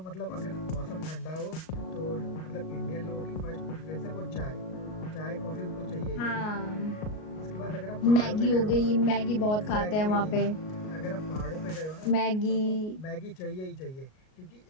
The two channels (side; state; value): right; late; 38 ms